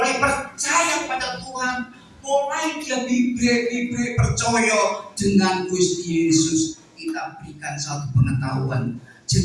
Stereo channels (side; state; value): both; identical; correlation 1.00